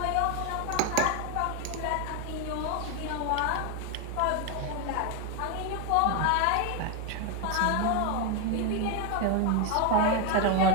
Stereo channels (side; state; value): both; different; correlation 0.01